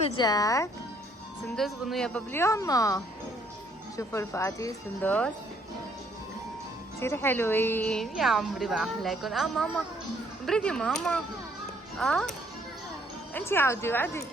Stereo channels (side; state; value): both; normal; correlation 0.66